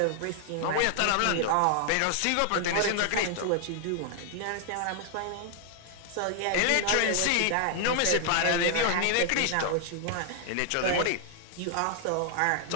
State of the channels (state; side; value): different; both; correlation 0.00